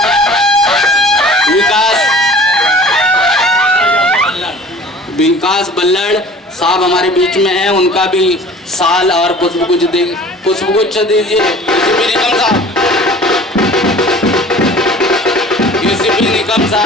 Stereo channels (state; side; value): normal; both; correlation 0.45